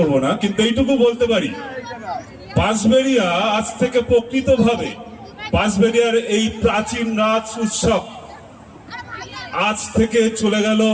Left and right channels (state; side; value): identical; both; correlation 1.00